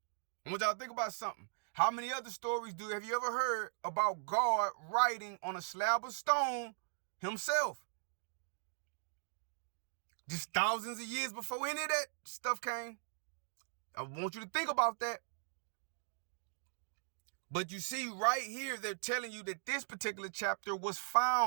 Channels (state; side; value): silent; left; digital silence